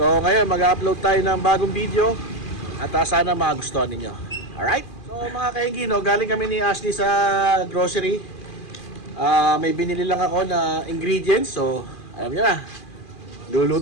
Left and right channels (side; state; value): right; late; 2.4 ms